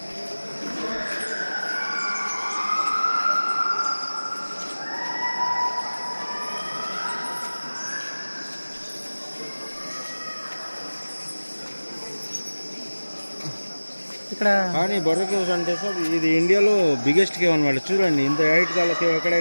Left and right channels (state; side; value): inverted; both; correlation -1.00